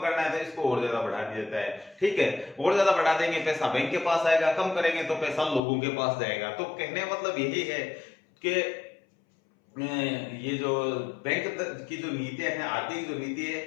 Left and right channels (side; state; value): right; drops out; at 5.6 s